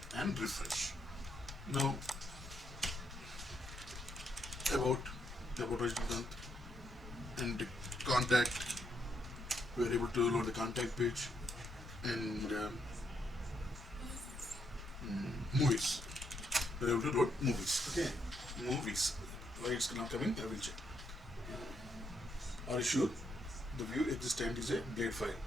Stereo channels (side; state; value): both; normal; correlation 0.77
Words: and refresh. Now about original and contact, we are able to load the contact page, and movies. We're able to load movies. Okay, movies. Why it's not coming? I will check. Are you sure? The view existent is a blade file.